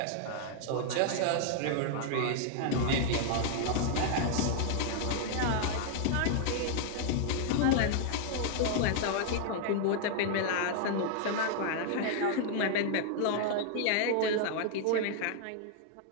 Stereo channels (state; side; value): different; both; correlation 0.00